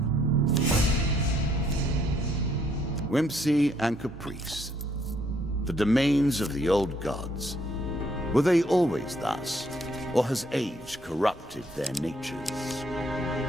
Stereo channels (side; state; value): both; normal; correlation 0.68